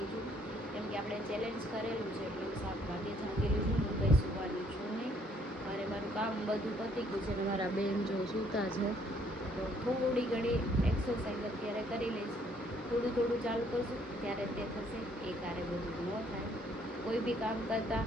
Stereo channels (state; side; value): normal; both; correlation 0.65